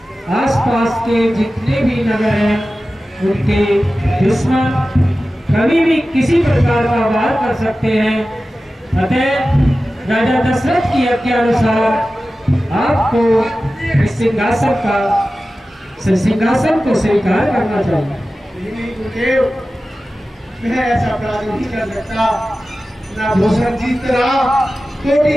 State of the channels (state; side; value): normal; both; correlation 0.95